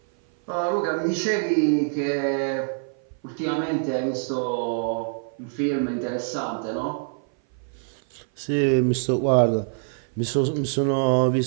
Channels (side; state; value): left; silent; 57 dB below the other